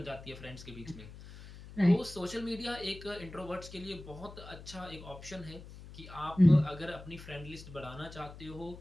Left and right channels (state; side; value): noise; left; hum, 15 dB below the sound